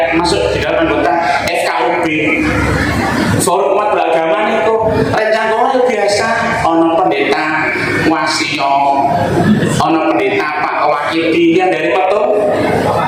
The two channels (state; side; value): identical; both; correlation 1.00